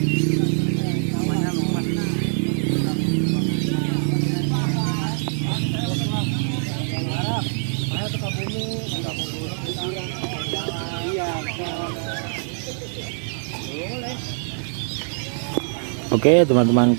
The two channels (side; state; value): left; silent; 63 dB below the other